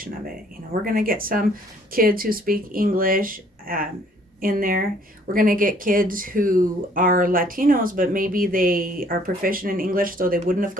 of it. We're going to get some kids who speak English in there. We're going to get kids who are Latinos, but maybe they are proficient in English, so they wouldn't have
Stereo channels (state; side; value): normal; both; correlation 0.60